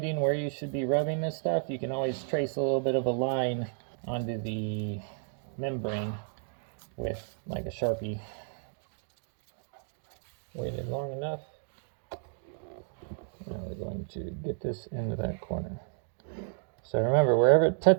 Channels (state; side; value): silent; left; 56 dB below the other